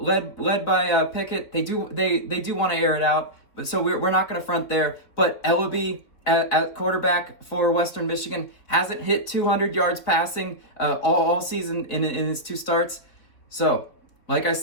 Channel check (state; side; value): late; right; 3.8 ms